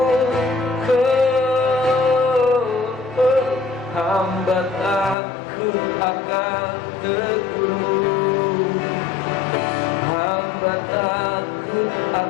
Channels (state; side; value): drops out; right; at 5.2 s